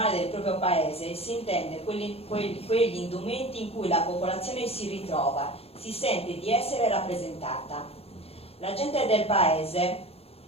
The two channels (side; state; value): right; late; 0.29 ms